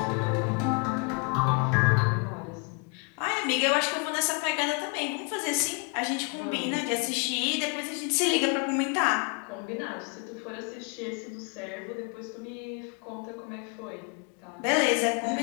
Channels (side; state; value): right; quieter; 33.5 dB